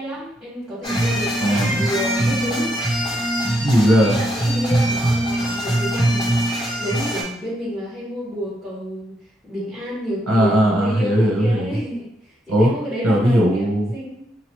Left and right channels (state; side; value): normal; both; correlation 0.78